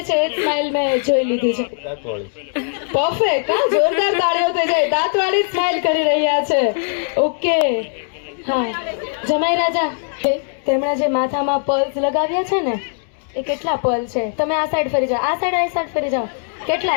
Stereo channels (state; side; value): silent; right; digital silence